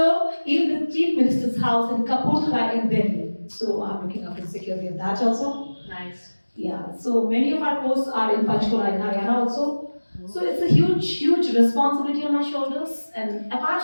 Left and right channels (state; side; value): inverted; both; correlation -1.00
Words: even the Chief Minister's house in Kapurthala in Delhi, so I'm looking after the security of that also. Nice. Yeah, so many of our posts are in Panchkula in Haryana also. So it's a huge, huge responsibility on my shoulders. And apart